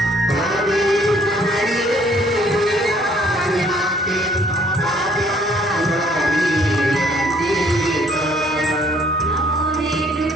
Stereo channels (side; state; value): both; normal; correlation 0.62